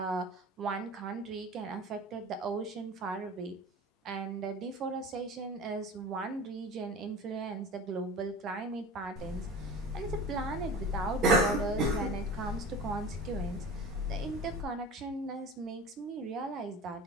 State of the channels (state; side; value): normal; both; correlation 0.36